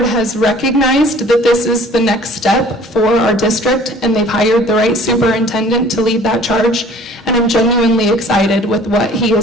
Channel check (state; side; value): normal; both; correlation 0.51